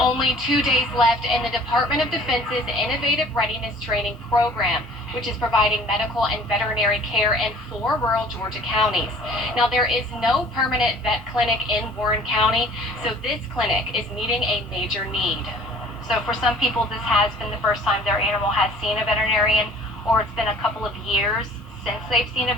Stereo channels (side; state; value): both; normal; correlation 0.51